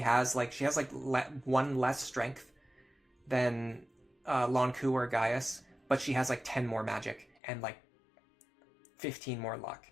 one less strength than Lonku or Gaius, but she has like 10 more magic and like 15 more luck.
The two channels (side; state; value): right; drops out; at 7.4 s